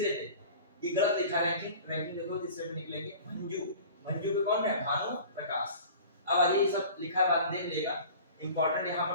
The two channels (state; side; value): inverted; both; correlation -0.41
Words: पे, ये गलत लिखा है रैंकिंग देखो, तीसरे पे निकलेगी भंजू पे कौन है, भानु प्रकाश। अब आइए ये सब लिखा है, बाद देख लेगा। इंपॉर्टेंट यहाँ